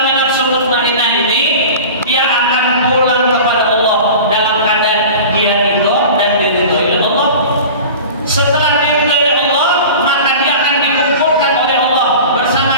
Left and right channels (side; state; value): both; inverted; correlation -0.36